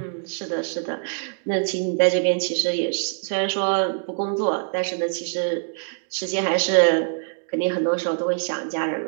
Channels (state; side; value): silent; left; digital silence